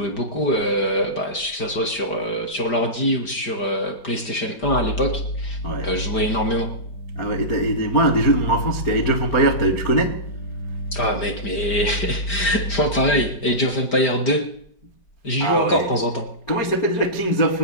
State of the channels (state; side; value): late; right; 5.0 ms